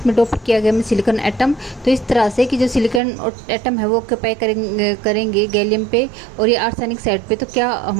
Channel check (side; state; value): left; drops out; at 3.0 s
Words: डोप किया गया है सिलिकॉन एटम। तो इस तरह से कि जो सिलिकॉन एटम है वो ऑक्यूपाई करेंगे गैलियम पे और ये आर्सेनिक साइड पे, तो क्या